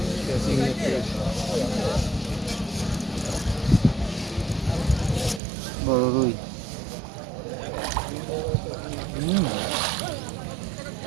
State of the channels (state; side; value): drops out; left; at 5.4 s